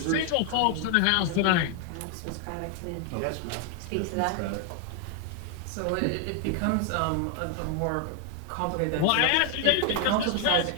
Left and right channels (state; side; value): different; both; correlation 0.01